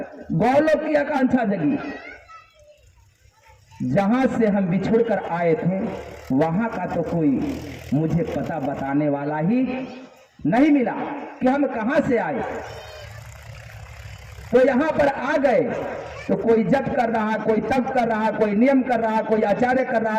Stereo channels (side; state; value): both; identical; correlation 1.00